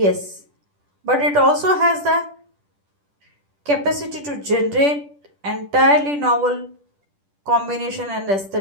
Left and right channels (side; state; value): left; late; 10 ms